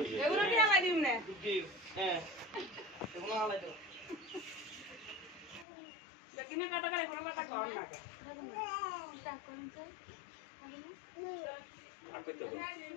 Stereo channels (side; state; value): right; drops out; at 5.7 s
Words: এগুলো কি আলাই দিম না হ্যাঁ এগুলো আলাই দাও কিনে কাটা করে এগুলো কাটা কর না আগে তো